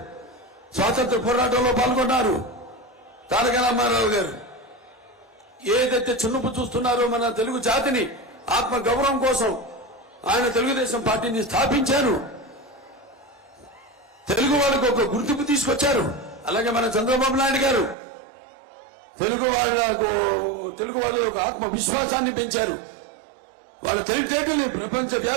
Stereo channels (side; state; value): left; drops out; at 17.9 s